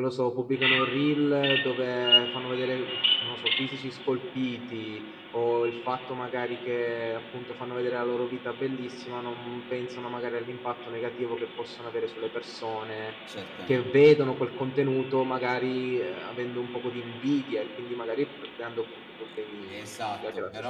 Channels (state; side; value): identical; both; correlation 1.00